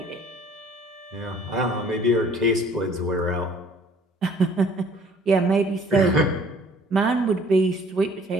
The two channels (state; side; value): normal; both; correlation 0.55